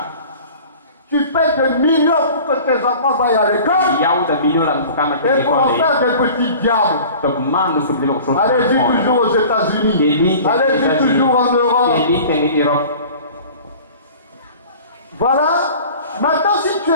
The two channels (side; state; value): both; inverted; correlation -0.43